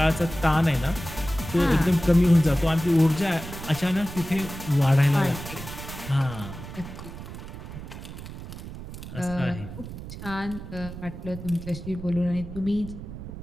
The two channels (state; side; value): noise; right; rumble, 11 dB below the sound